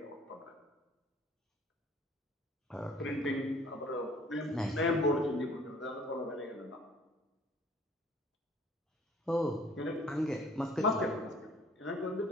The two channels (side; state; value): both; normal; correlation 0.54